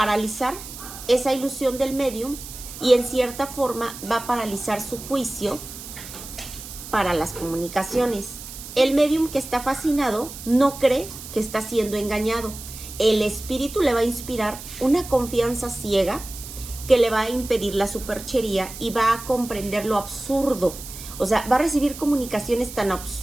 esa ilusión del médium y en cierta forma va a paralizar su juicio para las comunicaciones. El médium que está fascinado no cree que está siendo engañado. El espíritu le va a inspirar una confianza ciega que le va a impedir la superchería y va a comprender lo absurdo. O sea, va a recibir comunicaciones tan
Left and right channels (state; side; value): noise; right; hiss, 12 dB below the sound